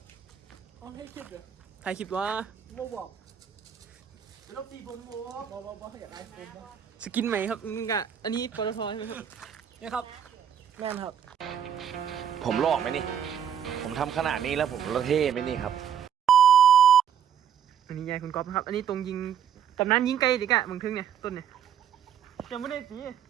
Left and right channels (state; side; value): quieter; left; 8.6 dB